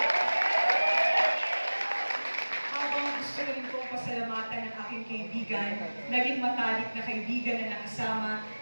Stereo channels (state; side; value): inverted; both; correlation -1.00